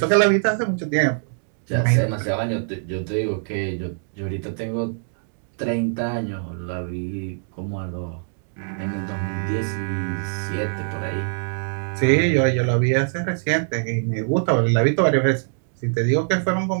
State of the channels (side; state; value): left; silent; digital silence